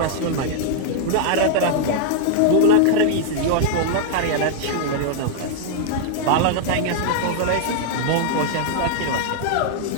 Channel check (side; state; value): both; different; correlation 0.00